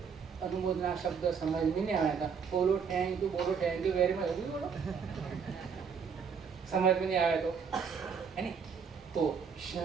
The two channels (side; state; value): left; quieter; 6.3 dB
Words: अनुमोदना शब्द समझ में नहीं आया था, बोलो थैंक यू वेरी मच, अभी बोलो समझ में नहीं आया तो, है नहीं। तो